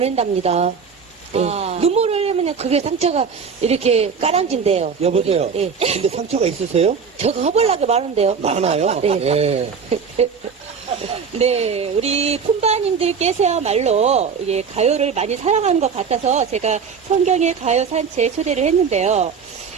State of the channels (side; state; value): left; quieter; 6.1 dB